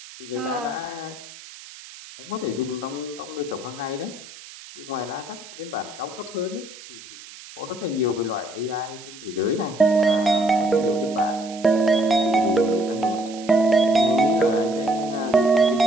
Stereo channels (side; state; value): right; noise; hiss, 17 dB below the sound